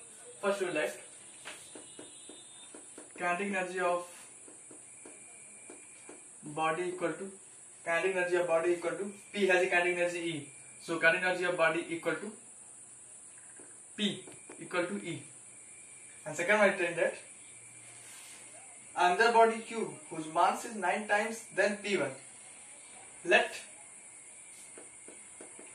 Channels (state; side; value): identical; both; correlation 1.00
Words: First we will write kinetic energy of body equal to P has a kinetic energy E. So kinetic energy of body equal to P equal to E. And second one I write that another body Q, whose mass is 9 times than P1. Let